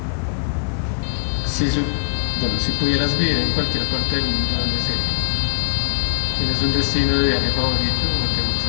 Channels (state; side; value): silent; right; 65 dB below the other